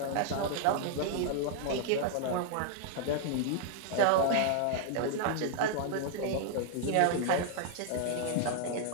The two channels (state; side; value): different; both; correlation -0.01